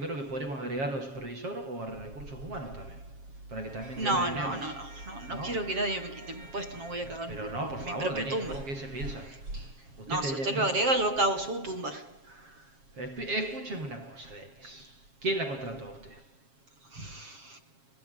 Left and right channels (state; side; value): late; left; 7.4 ms